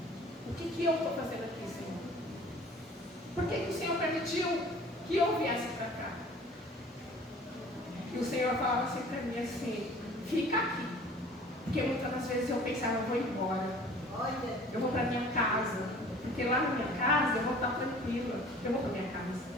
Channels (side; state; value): both; normal; correlation 0.48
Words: O que eu estou fazendo aqui, Senhor? Por que o Senhor permitiu que eu viesse para cá? E o Senhor falava assim para mim assim: fica aqui. Porque muitas das vezes eu pensava: eu vou embora. Eu vou para minha casa. Porque lá na minha casa eu vou estar tranquila. Eu vou para minha casa.